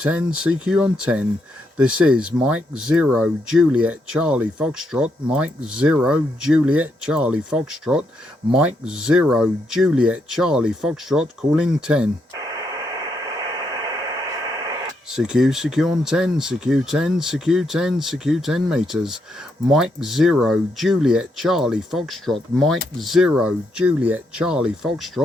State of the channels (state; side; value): normal; both; correlation 0.78